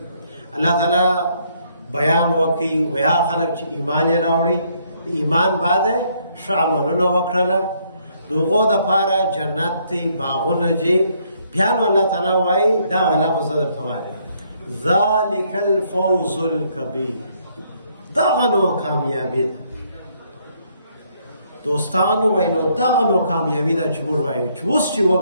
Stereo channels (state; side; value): inverted; both; correlation -0.69